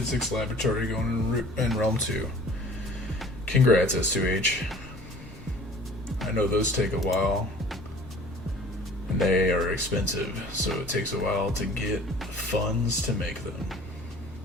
laboratory going in Realm 2. Congrats, S2H. I know those take a while. And they are expensive, so it takes a while to get funds to make them.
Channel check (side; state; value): both; normal; correlation 0.48